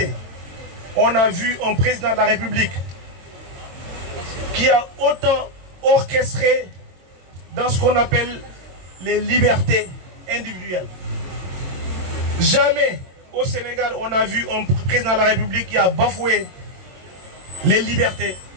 on a vu un président de la République qui a autant orchestré dans ce qu'on appelle les libertés individuelles. Jamais au Sénégal on a vu un président de la République qui a bafoué les libertés,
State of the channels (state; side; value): late; left; 22 ms